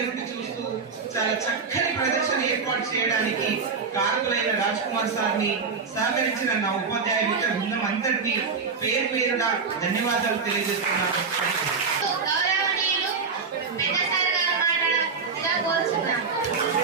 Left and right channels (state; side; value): quieter; left; 5.1 dB